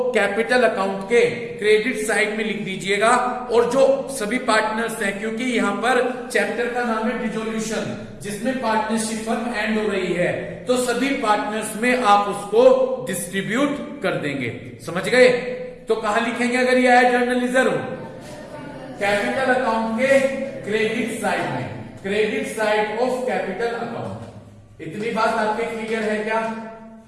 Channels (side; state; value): both; identical; correlation 1.00